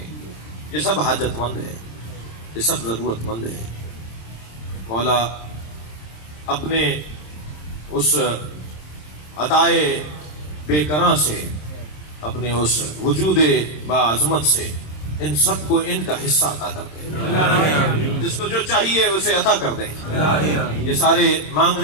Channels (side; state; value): right; late; 26 ms